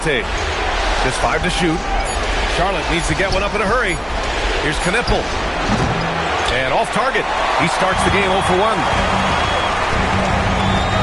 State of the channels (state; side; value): identical; both; correlation 1.00